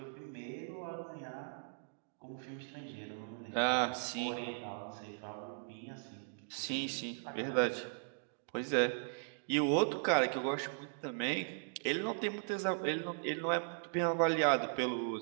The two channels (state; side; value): silent; left; digital silence